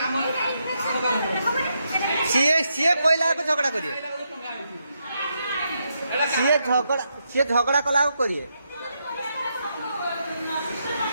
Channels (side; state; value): both; inverted; correlation -0.81